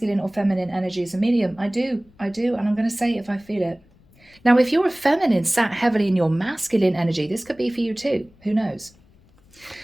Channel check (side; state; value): left; noise; rumble, 29 dB below the sound